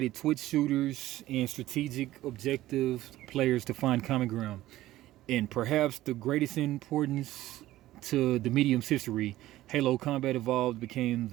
Twitch shooters and strategic objective players to find common ground. And perhaps the greatest importance to the medium's history, Halo Combat Evolved became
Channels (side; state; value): left; quieter; 15.5 dB